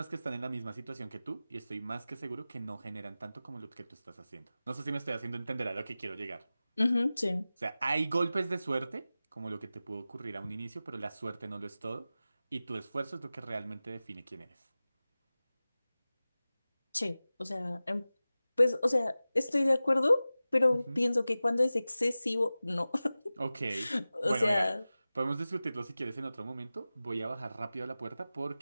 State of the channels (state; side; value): inverted; both; correlation -0.96